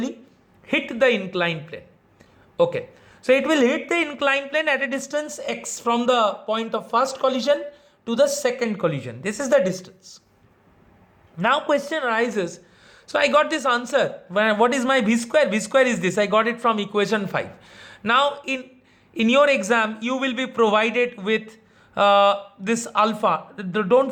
hit the inclined plane. Okay, so it will hit the inclined plane at a distance x from the point of first collision to the second collision. This is the distance. Now question arises, so I got this answer. What is my v square? V square is this, I got it from equation 5. Now in your exam you will be provided with this alpha.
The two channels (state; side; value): identical; both; correlation 1.00